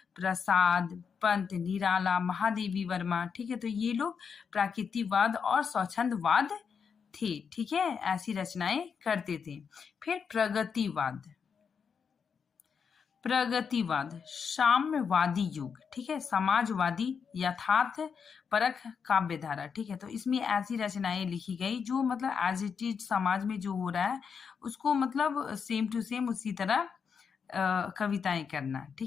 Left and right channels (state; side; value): quieter; right; 6.3 dB